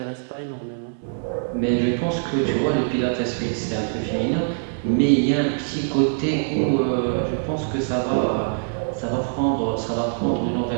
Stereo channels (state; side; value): silent; left; digital silence